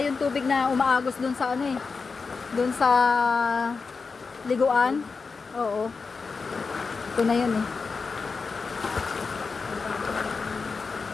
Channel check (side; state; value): right; quieter; 4.7 dB